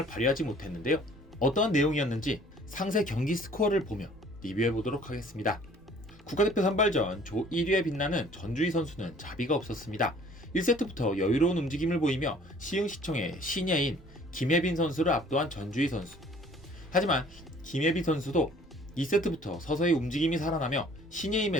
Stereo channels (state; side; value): normal; both; correlation 0.54